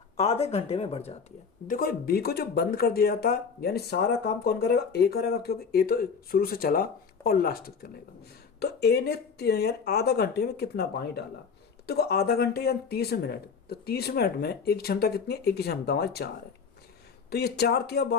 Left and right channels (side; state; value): right; quieter; 5.8 dB